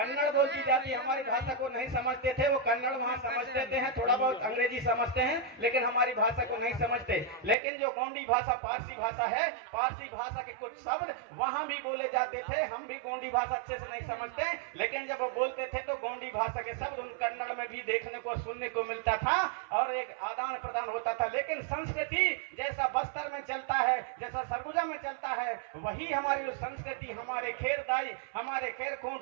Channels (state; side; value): drops out; left; at 7.6 s